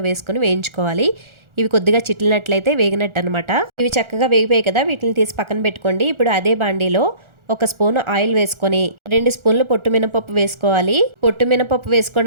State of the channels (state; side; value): late; left; 1.4 ms